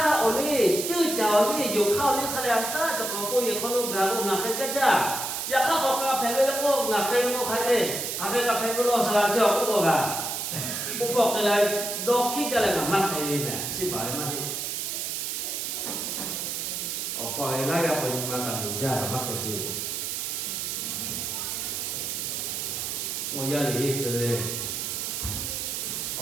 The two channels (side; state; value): right; noise; hiss, 3 dB below the sound